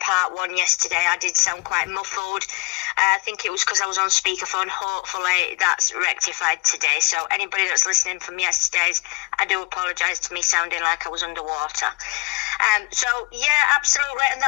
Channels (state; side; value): quieter; right; 26.3 dB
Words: one yesterday. I did sound quite muffled. I think it was because I was on speakerphone. Hopefully that's rectified today. So anybody that's listening from yesterday's, I do apologise to me sounding like I was underwater. So, yeah, absolutely. And